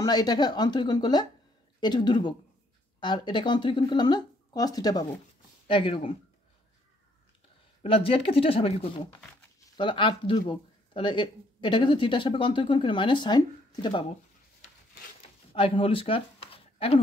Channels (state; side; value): normal; both; correlation 0.67